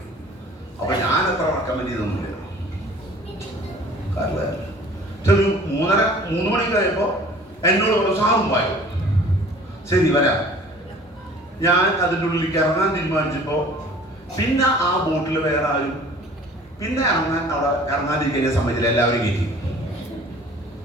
അപ്പൊ ഞാൻ എത്ര റെക്കമെൻഡ് ചെയ്തൊന്നുമില്ല. കാരണം ഒരു 3 മണി കഴിയുമ്പോ എന്നോട് ഒരു സാറും പായോ, ശരി വരാം. ഞാൻ അതിൻ്റെ ഉള്ളിലേക്ക് ഇറങ്ങാൻ തീരുമാനിച്ചപ്പോ പിന്നെ ആ ബോട്ടിൽ വേറെ ആരും പിന്നെ ഇറങ്ങാതിരിക്കാൻ സമ്മതിച്ചില്ല, എല്ലാവരും കയറ്റി.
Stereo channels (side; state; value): both; normal; correlation 0.48